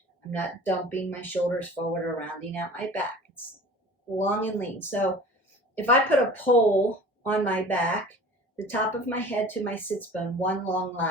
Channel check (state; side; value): normal; both; correlation 0.42